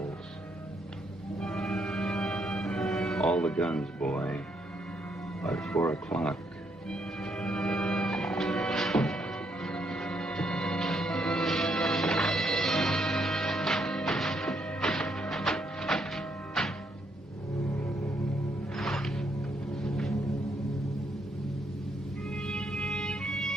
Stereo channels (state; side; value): normal; both; correlation 0.74